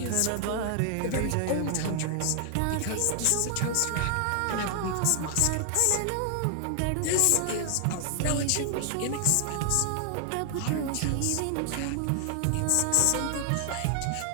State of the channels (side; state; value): both; different; correlation 0.00